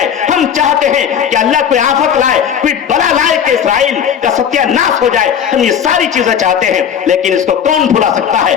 हम चाहते हैं कि अल्लाह कोई आफत लाए, कोई बला लाए कि इसराइल का सत्यानाश हो जाए। हम ये सारी चीजें चाहते हैं, लेकिन इसको कौन भुला सकता है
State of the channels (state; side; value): quieter; right; 8.3 dB